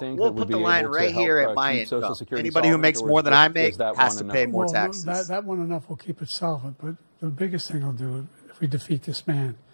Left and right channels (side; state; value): both; inverted; correlation -1.00